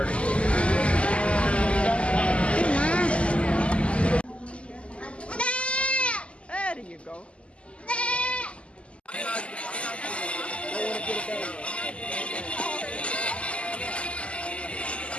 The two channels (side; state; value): right; late; 0.057 ms